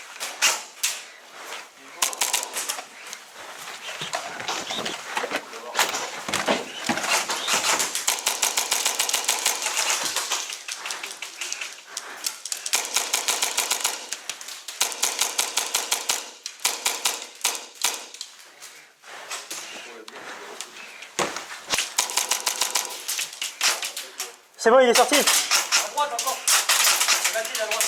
C'est bon, il est sorti. À droite encore. Vas-y, à droite.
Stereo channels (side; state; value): both; identical; correlation 1.00